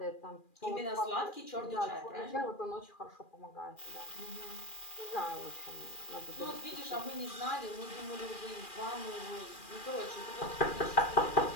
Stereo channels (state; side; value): late; right; 2.4 ms